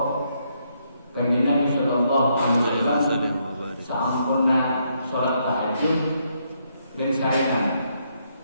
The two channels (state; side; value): inverted; both; correlation -0.75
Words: Kanjeng Nabi sallallahu alaihi wasallam sampurna salat tahajud dan sarekan.